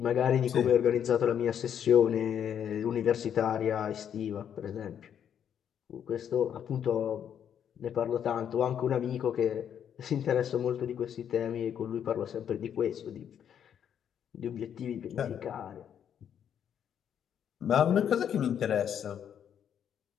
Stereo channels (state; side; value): quieter; right; 8.9 dB